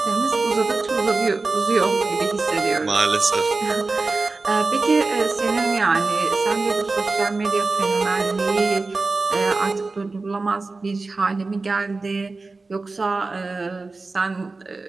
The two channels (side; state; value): left; quieter; 3.7 dB